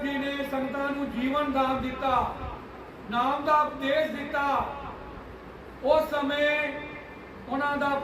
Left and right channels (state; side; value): identical; both; correlation 1.00